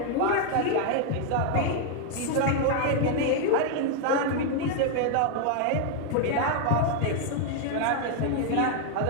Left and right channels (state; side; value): different; both; correlation 0.00